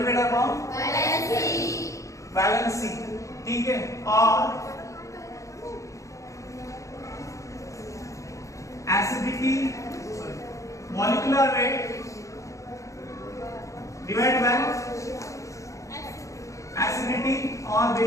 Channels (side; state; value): right; late; 0.15 ms